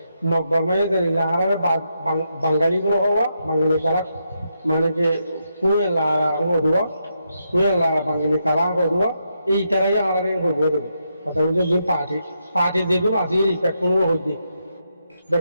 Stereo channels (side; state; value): both; inverted; correlation -0.82